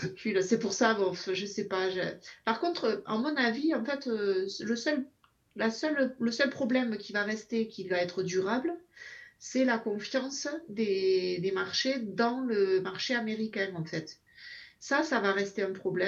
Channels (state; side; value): identical; both; correlation 1.00